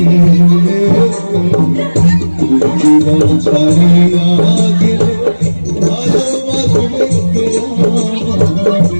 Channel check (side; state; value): both; inverted; correlation -1.00